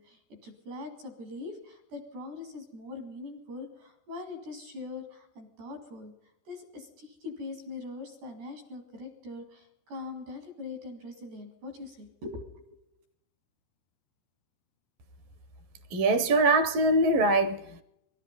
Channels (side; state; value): left; late; 11 ms